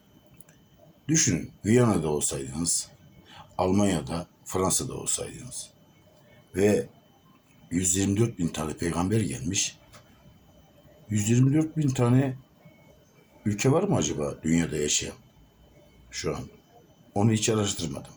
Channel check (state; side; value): identical; both; correlation 1.00